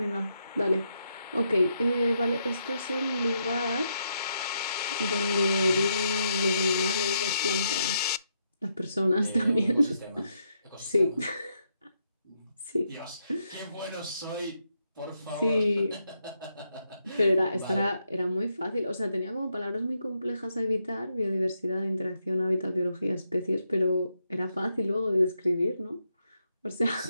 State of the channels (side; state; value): both; inverted; correlation -0.79